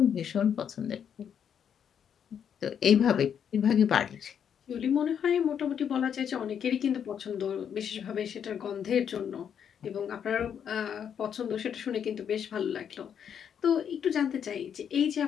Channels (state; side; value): quieter; right; 8.2 dB